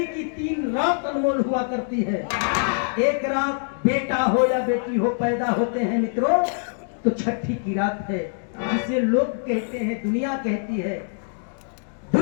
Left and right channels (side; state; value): right; silent; 62 dB below the other